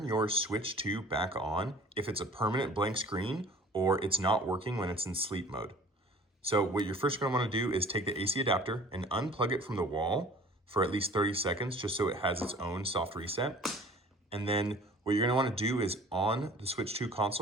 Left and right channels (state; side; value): normal; both; correlation 0.48